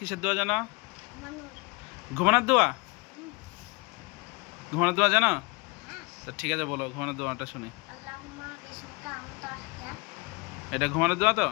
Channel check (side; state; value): right; quieter; 29.0 dB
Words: দোয়া জানো? ঘুমানোর। ঘুমানোর দোয়া? হুম, ঘুমানোর দোয়া জানো? হ্যাঁ, তো ঠিক আছে, বলো ঘুমানোর দোয়াটা শুনি। আল্লাহুম্মা বিসমিকা আমতা আহইয়া। এটা ঘুমানোর দোয়া তো?